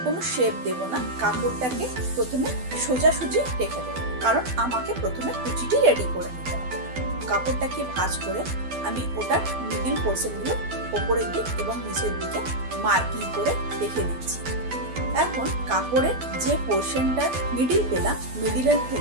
কোনো শেপ দেব না, কাপড়টাকে প্রথমে সোজাসুজি রেখে দেবো, কারণ আমাকে প্রথমে কুচিটি রেডি করে নিতে হবে। কাপড়টাকে ভাঁজ করে আমি ওটার মিডিল পোর্শনগুলো ওপরের দিক এবং নিচের দিকে মার্কিং করে রেখে দিচ্ছি। এখন কাপড়ের যে পোর্শনটা মিডিল পেলাম, মিডিলের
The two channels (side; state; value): left; late; 12 ms